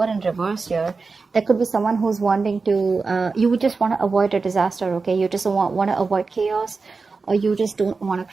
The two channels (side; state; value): left; quieter; 4.3 dB